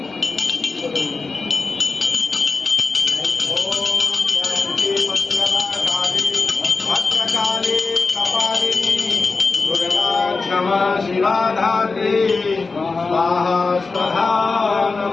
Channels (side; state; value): right; quieter; 4.1 dB